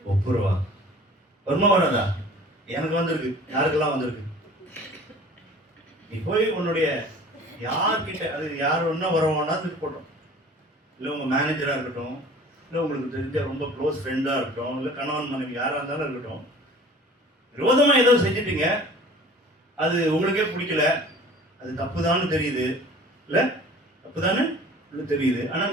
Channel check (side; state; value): both; normal; correlation 0.46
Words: ஒப்புரவா. வருமா வராதா? எனக்கு வந்திருக்கு, யாருக்கெல்லாம் வந்திருக்கு. நீ போய் உன்னுடைய யார்கிட்ட, அது யார் ஒன்னா வரவானா போட்டோம், இல்லை உங்க மேனேஜரா இருக்கட்டும், இல்லை உங்களுக்கு தெரிஞ்ச ரொம்ப க்ளோஸ் ஃப்ரெண்டா இருக்கட்டும், இல்லை கணவன் மனைவி யாரா இருந்தாலும் இருக்கட்டும், விரோதமா ஏதோ செஞ்சுட்டீங்க, அது உங்களுக்கே பிடிக்கல, அது தப்புதான்னு தெரியுது, இல்ல தப்புதானு தெரியுது. ஆனா